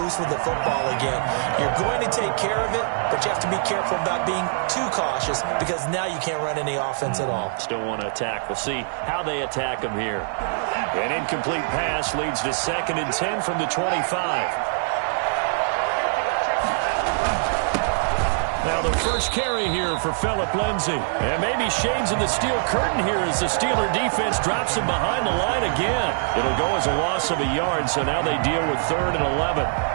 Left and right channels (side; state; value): left; silent; digital silence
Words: loose with the football again. You're going to take care of it, but you have to be careful about being too cautious because now you can't run any offense at all. Still want to attack. We'll see how they attack them here. An incomplete pass leads to 2nd and 10 from the 25. Now the first carry here for Phillip Lindsay. And maybe shades in the steel curtain here as the Steeler defense drops him behind the line again. It'll go as a loss of a yard, so now they deal with 3rd and 11.